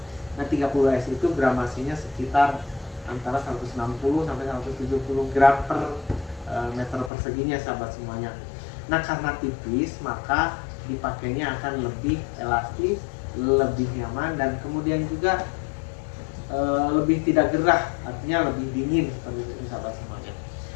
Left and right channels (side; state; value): right; drops out; at 7.1 s